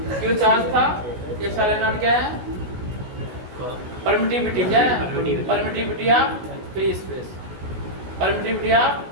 Q charge था, एप्सिलॉन नॉट क्या है? परमिटिविटी। क्या है? Permittivity of free space.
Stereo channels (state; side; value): late; left; 16 ms